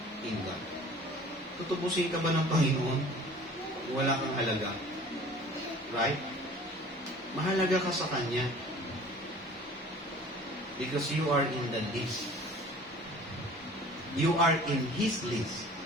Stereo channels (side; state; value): both; normal; correlation 0.47